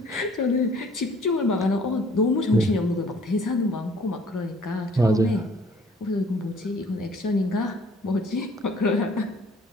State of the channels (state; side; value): normal; both; correlation 0.56